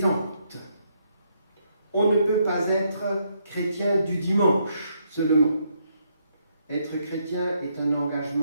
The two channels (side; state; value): both; inverted; correlation -0.75